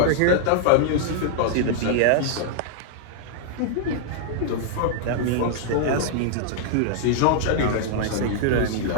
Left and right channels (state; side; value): different; both; correlation -0.01